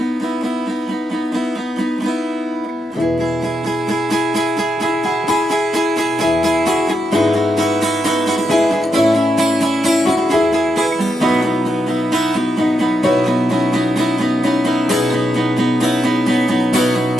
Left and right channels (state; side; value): normal; both; correlation 0.83